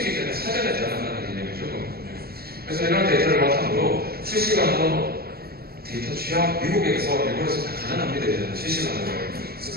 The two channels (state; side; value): late; left; 0.45 ms